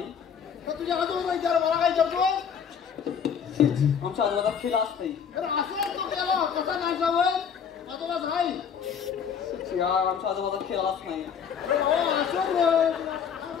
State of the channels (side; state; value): right; quieter; 7.2 dB